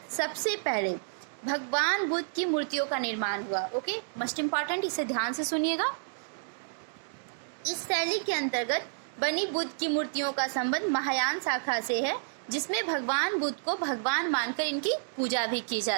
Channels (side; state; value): left; silent; digital silence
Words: सबसे पहले भगवान बुद्ध की मूर्तियों का निर्माण हुआ। ओके, मोस्ट इंपॉर्टेंट, इसे ध्यान से सुनिएगा। इस शैली के अंतर्गत बनी बुद्ध की मूर्तियों का संबंध महायान शाखा से है, जिसमें भगवान बुद्ध को भगवान मानकर इनकी पूजा भी की